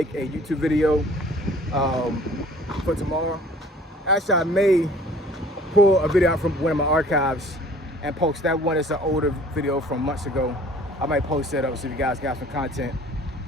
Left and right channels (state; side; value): normal; both; correlation 0.51